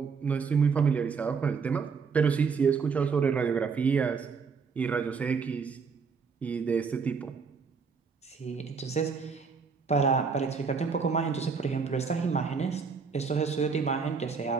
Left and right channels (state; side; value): quieter; left; 5.5 dB